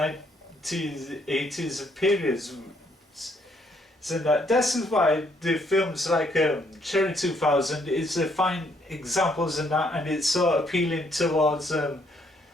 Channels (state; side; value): normal; both; correlation 0.69